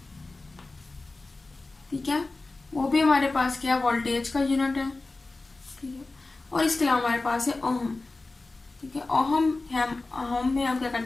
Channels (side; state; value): right; quieter; 3.3 dB